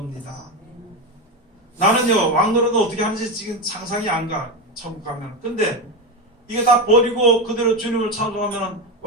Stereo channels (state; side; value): normal; both; correlation 0.15